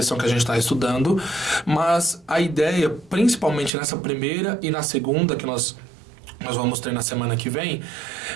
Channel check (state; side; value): drops out; left; at 3.7 s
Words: que a gente está estudando, mas a ideia, principalmente nessa primeira e na segunda, que nós vamos ter na semana que vem,